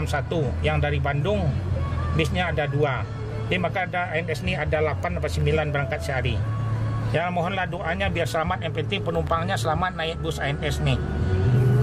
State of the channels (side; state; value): both; identical; correlation 1.00